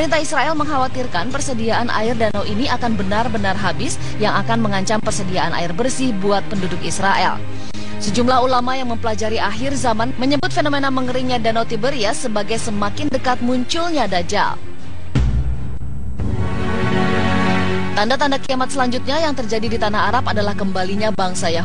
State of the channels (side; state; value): both; identical; correlation 1.00